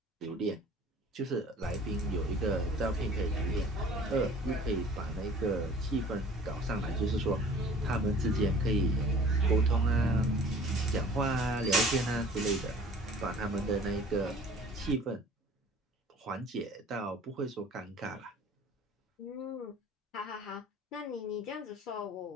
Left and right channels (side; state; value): both; normal; correlation 0.48